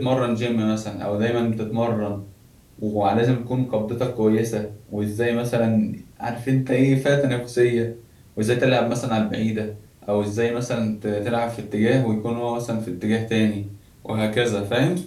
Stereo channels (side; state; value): both; identical; correlation 1.00